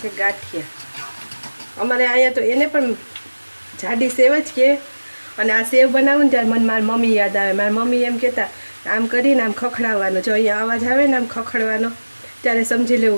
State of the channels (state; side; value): inverted; both; correlation -1.00